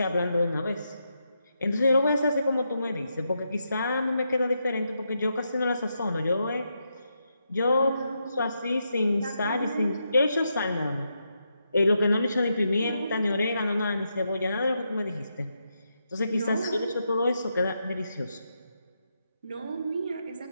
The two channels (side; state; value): both; inverted; correlation -0.83